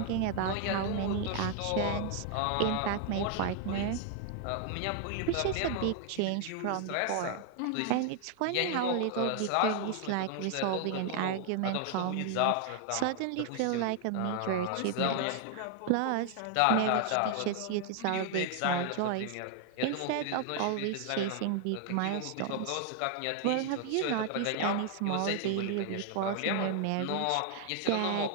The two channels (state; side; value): different; both; correlation 0.00